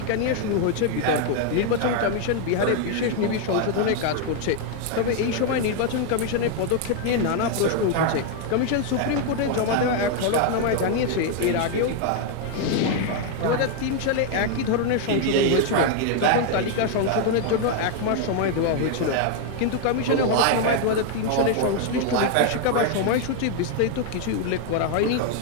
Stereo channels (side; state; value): both; different; correlation 0.00